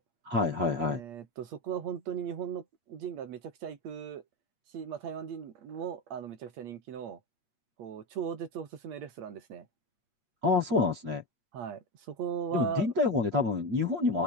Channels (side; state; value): left; late; 8.5 ms